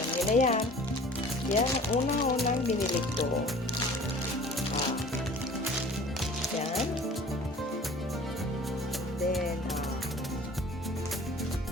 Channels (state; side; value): normal; both; correlation 0.46